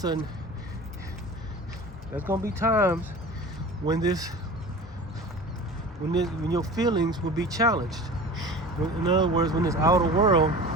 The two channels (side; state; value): both; normal; correlation 0.37